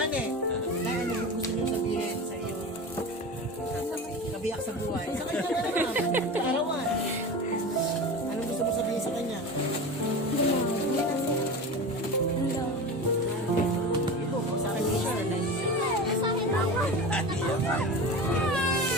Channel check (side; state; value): both; normal; correlation 0.29